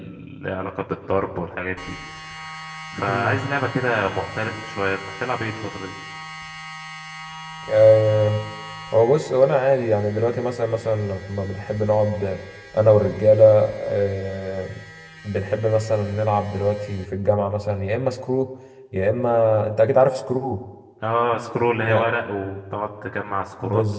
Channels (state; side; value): identical; both; correlation 1.00